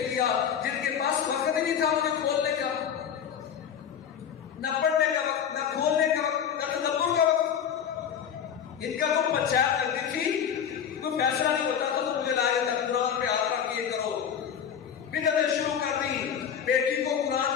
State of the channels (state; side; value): quieter; right; 8.3 dB